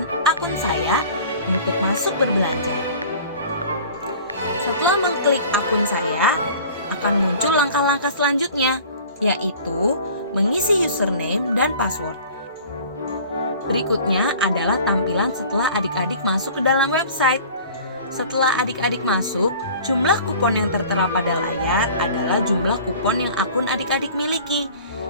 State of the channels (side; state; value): both; inverted; correlation -0.45